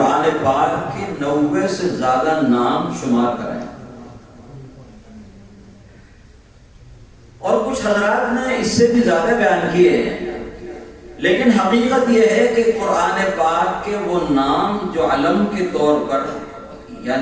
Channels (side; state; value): both; identical; correlation 1.00